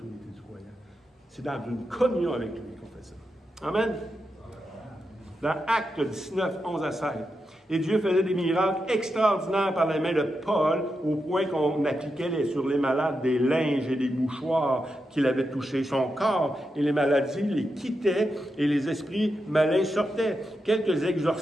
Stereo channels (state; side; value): normal; both; correlation 0.87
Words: du croyant. C'est dans une communion avec lui qu'on fait ça. Amen. Dans Actes 19, 11 à 16. Et Dieu faisait des miracles extraordinaires par la main de Paul, au point qu'on appliquait sur les malades des linges et des mouchoirs qu'il avait touchés. Son corps et les maladies les quittaient et les esprits malins sortaient. Quelques